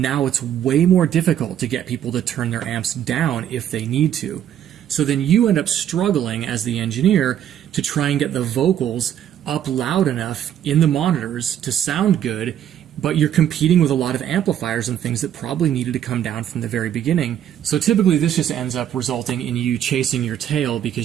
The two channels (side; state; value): left; quieter; 10.3 dB